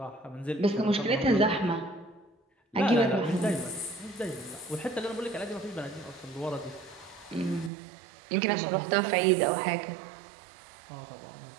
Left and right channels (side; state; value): left; drops out; at 7.7 s